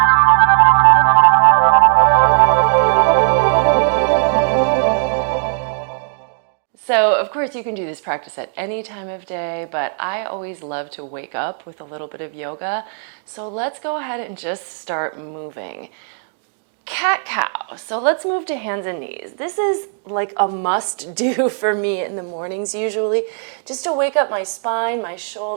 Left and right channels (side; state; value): left; silent; digital silence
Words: So of course you can do this practice at any time of day, but I always love to wake up with a little bit of yoga. So let's go ahead and just start moving. Cat-cow. So let's move to hands and knees. This is like a must do for me in the mornings usually, just to wake up my spine, my